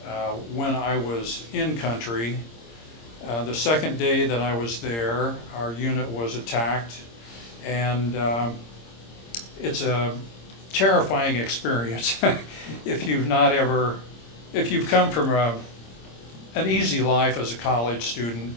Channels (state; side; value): late; right; 26 ms